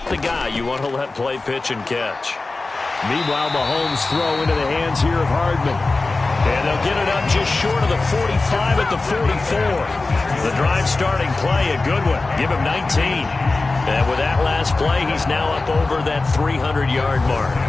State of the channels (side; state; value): right; quieter; 3.5 dB